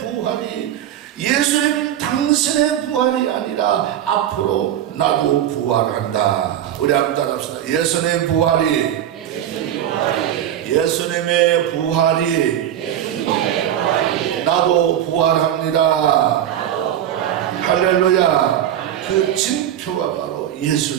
예수님 당신의 부활이 아니라 앞으로 나도 부활한다. 우리 한번 따라합시다. 예수님의 부활이 나도 부활합니다. 할렐루야. 그 징표가 바로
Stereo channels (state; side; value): quieter; left; 11.0 dB